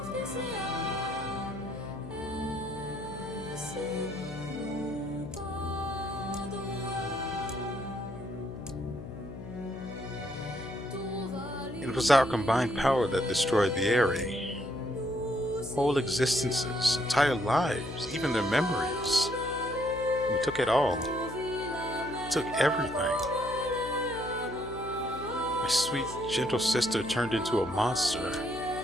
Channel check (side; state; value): left; noise; hum, 12 dB below the sound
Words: It was our combined power that destroyed the Aerie. Whole existences, entire lives, even their memories. We took it all. Took everything. My sweet, gentle sister turned into a monster,